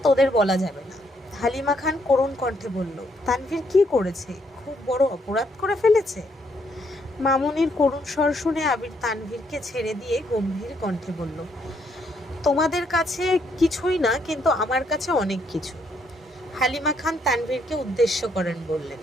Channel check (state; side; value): normal; both; correlation 0.73